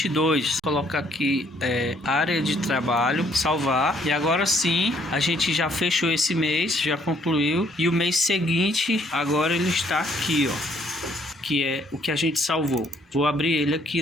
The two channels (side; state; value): both; normal; correlation 0.65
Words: Vou colocar aqui área de trabalho, salvar, e agora sim a gente já fechou esse mês, já concluiu, e o mês seguinte agora ele está aqui, ó, que é o que a gente salvou. Vou abrir ele aqui